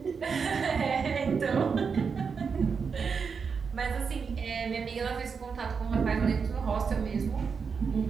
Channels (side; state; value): left; quieter; 5.7 dB